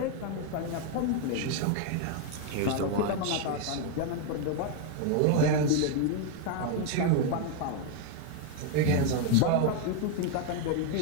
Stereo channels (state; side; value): different; both; correlation 0.01